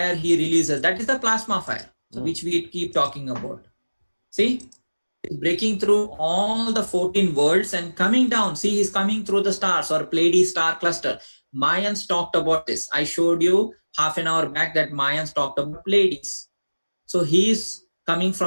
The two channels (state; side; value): inverted; both; correlation -1.00